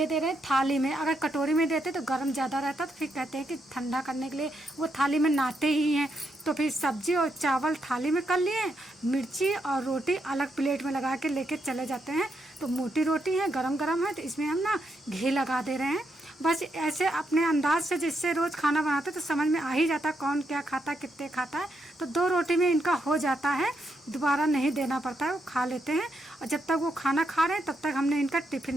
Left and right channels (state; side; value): normal; both; correlation 0.80